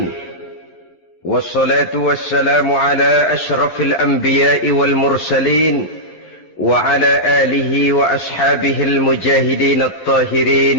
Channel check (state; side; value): late; right; 12 ms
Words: Wassalatu wassalamu ala ashrafil anbiya'i wal mursalin wa ala alihi wa ashabihil mujahidin